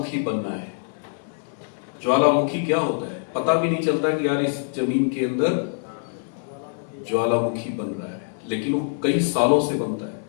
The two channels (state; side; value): silent; right; digital silence